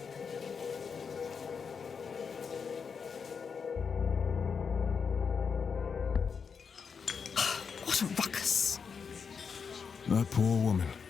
What a ruckus. That poor woman.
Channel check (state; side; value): quieter; right; 6.0 dB